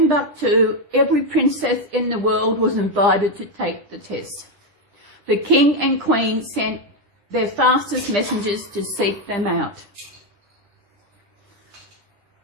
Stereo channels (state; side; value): late; left; 9.9 ms